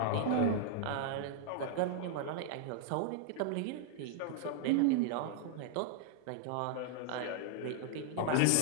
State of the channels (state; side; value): different; both; correlation -0.01